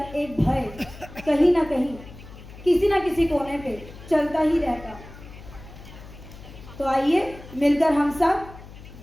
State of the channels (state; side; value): noise; left; hum, 17 dB below the sound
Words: एक भय कहीं ना कहीं किसी ना किसी कोने पे चलता ही रहता। तो आइए मिलकर हम सब